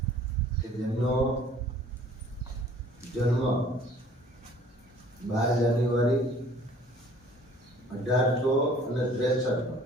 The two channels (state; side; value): normal; both; correlation 0.53